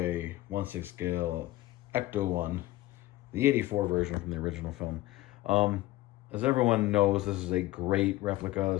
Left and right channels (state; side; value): quieter; right; 17.5 dB